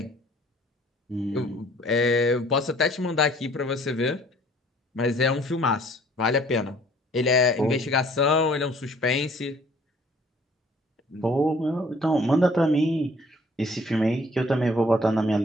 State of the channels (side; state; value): both; normal; correlation 0.56